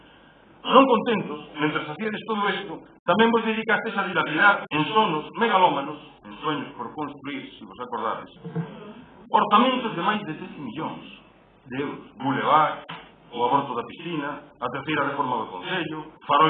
Non contentos, mentre facíades todo isto, tamén vos dedicastes a dilapidar en sonos megalómanos, en sueños por construir, se vos acordades, orzamentos de máis de 13 millóns de euros. Boulevard, o aborto da piscina, a terceira reforma do Concello,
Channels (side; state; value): both; identical; correlation 1.00